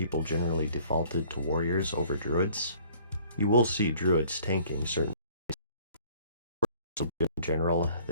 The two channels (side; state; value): both; inverted; correlation -0.55